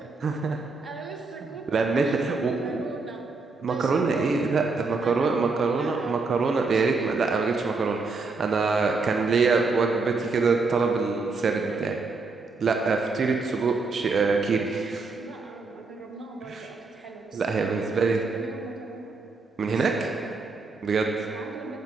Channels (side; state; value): left; quieter; 4.0 dB